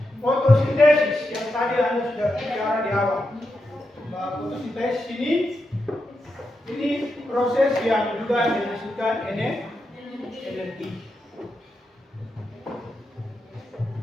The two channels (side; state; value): both; normal; correlation 0.86